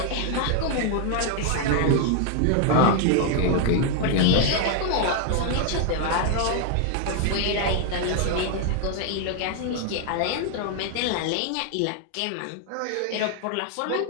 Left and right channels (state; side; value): different; both; correlation 0.00